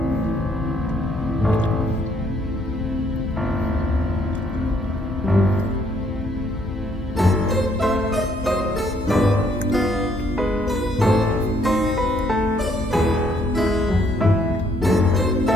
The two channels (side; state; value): both; normal; correlation 0.69